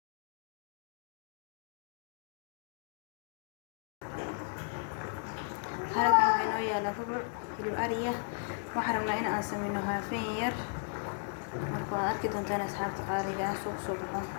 هذا كان ويا لفبر في الأرية وحرمنا إن أسمينها فير marka arki doontaan asxaabta qaaliga ah suuq soo baxo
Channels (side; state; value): right; silent; digital silence